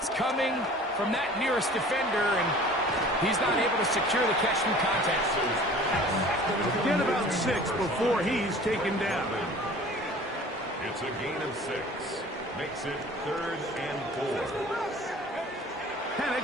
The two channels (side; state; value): both; normal; correlation 0.46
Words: coming from that nearest defender, and he's not able to secure the catch through contact. Get about 6 before he's taken down. It's a gain of 6. Makes it 3rd and 4.